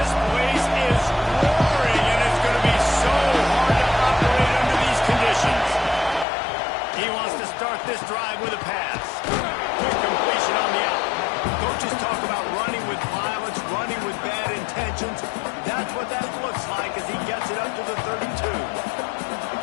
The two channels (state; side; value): drops out; right; at 6.2 s